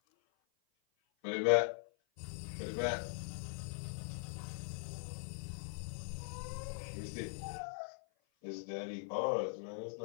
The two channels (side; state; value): right; silent; 50 dB below the other